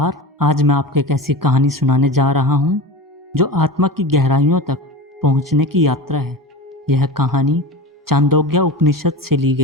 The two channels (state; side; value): normal; both; correlation 0.29